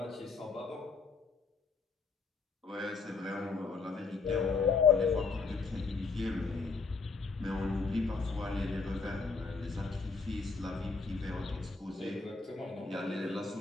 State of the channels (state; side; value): quieter; right; 4.6 dB